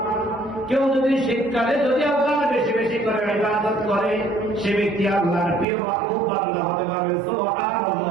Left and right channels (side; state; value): left; drops out; at 5.7 s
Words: কেউ যদি শীতকালে যদি আল্লাহর বেশি বেশি করে ইবাদত করে, সে ব্যক্তি আল্লাহর প্রিয় মাহবুব বান্দা হতে পারবে।